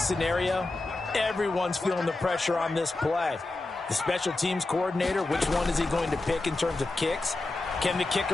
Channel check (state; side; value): quieter; right; 3.0 dB